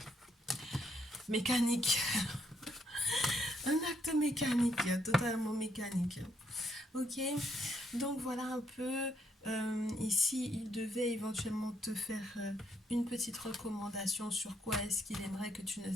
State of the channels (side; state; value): both; normal; correlation 0.73